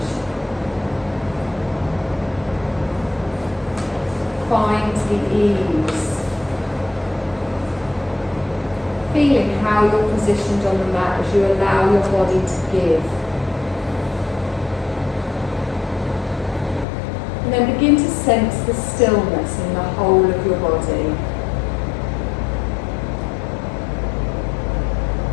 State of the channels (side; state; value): right; drops out; at 16.9 s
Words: Find the ease. Feeling how you're positioned on the mat as you allow your body to give. And then begin to sense the stillness in the whole of your body.